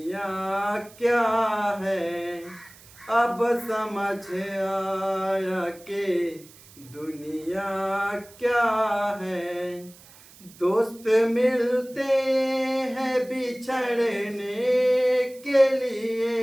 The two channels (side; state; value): right; noise; hiss, 23 dB below the sound